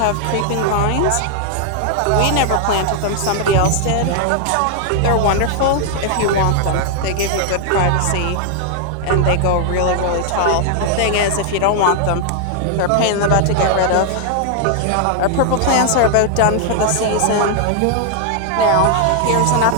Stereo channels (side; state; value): both; different; correlation 0.00